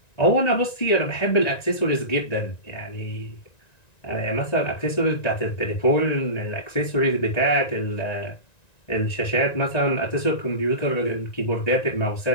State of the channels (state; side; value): late; right; 1.9 ms